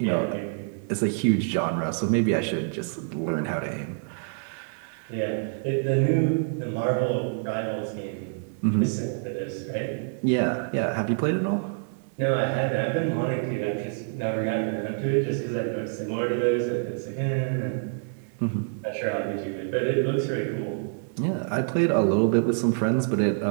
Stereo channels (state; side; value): silent; left; 60 dB below the other